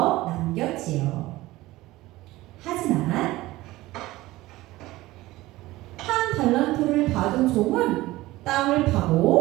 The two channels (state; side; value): quieter; left; 18.2 dB